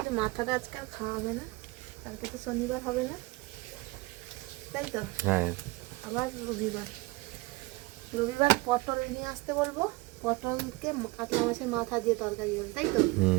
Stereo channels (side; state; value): left; quieter; 22.9 dB